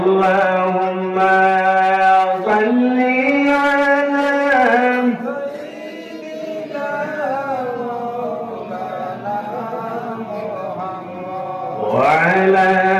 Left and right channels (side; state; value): both; identical; correlation 1.00